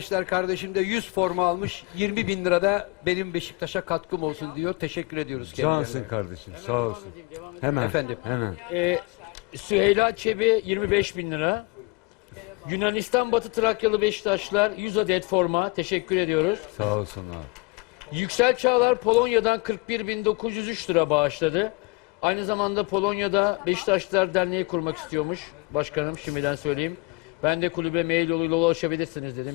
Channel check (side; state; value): right; quieter; 26.2 dB